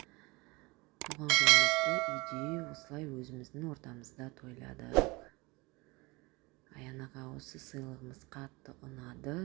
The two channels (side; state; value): left; quieter; 24.7 dB